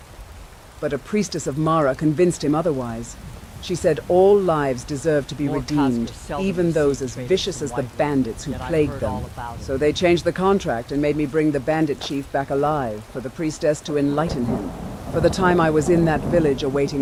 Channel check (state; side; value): identical; both; correlation 1.00